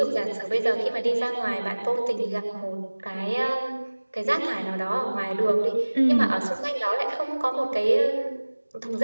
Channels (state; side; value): inverted; both; correlation -1.00